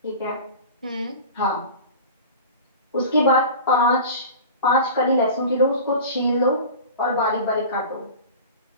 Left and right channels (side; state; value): both; inverted; correlation -0.35